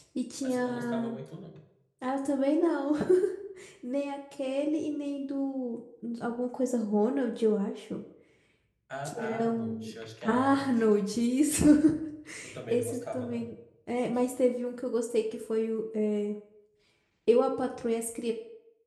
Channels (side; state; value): both; identical; correlation 1.00